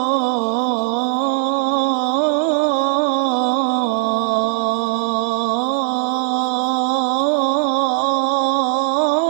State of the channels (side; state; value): left; silent; digital silence